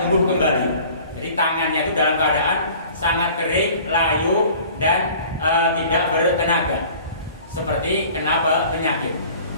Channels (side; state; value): both; inverted; correlation -0.48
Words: kembali. Jadi tangannya itu dalam keadaan sangat kering, layu, dan tidak bertenaga, seperti kena penyakit.